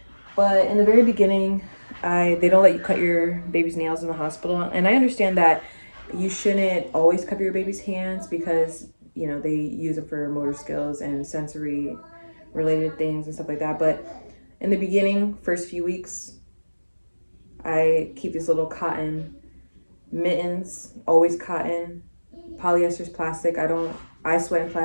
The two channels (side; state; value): both; inverted; correlation -1.00